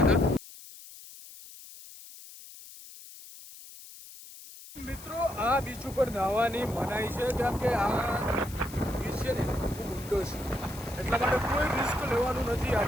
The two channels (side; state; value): left; noise; hiss, 17 dB below the sound